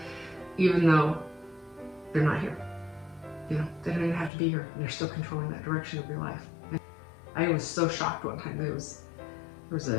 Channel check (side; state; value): right; drops out; at 4.3 s